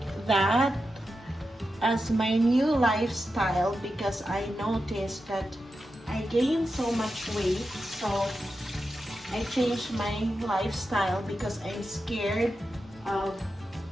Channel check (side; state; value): both; normal; correlation 0.89